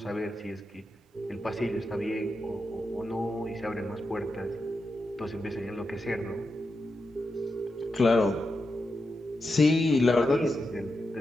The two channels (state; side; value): normal; both; correlation 0.88